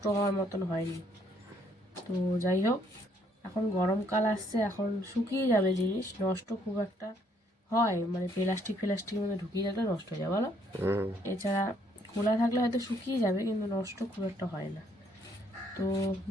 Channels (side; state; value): both; normal; correlation 0.68